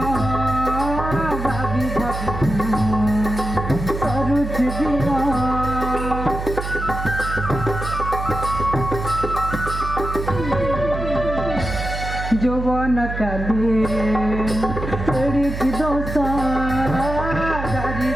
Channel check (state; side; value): noise; right; hum, 6 dB below the sound